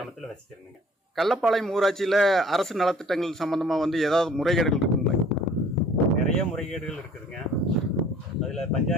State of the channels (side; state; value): both; normal; correlation 0.53